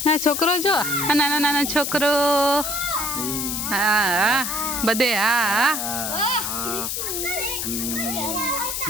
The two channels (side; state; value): left; noise; hiss, 2 dB below the sound